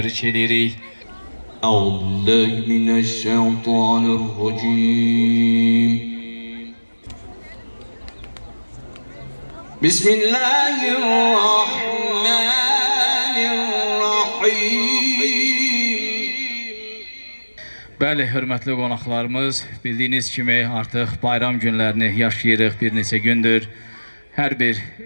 edirik. Euzubillahimineşşeytanirracim. Bismillahirrahmanirrahim. Bəli, hörmətli qonaqlarımız, bildiyiniz kimi artıq bayram günlərini yaşayırıq bir neçə gündür. Hər bir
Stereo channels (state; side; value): inverted; both; correlation -1.00